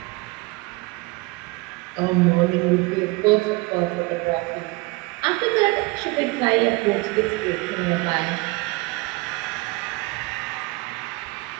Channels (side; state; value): left; quieter; 24.1 dB